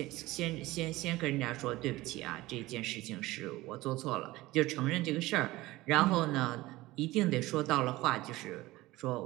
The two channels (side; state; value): left; quieter; 18.7 dB